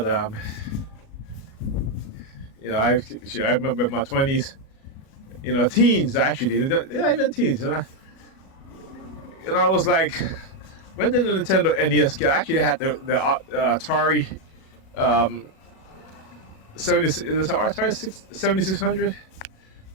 you know, I remember my 20s, you know, teens actually, yeah, even teens. You know, I was like, when did the Nintendo NES get? I actually had the Atari 7600.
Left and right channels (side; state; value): right; late; 37 ms